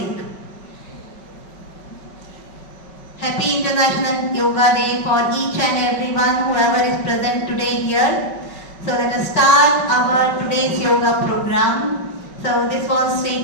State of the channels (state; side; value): late; right; 5.3 ms